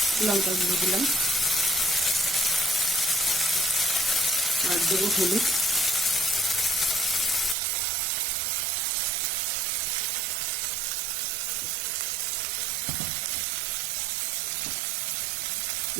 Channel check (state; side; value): drops out; left; at 7.6 s